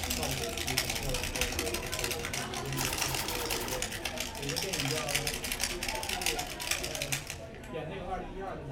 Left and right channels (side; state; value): both; identical; correlation 1.00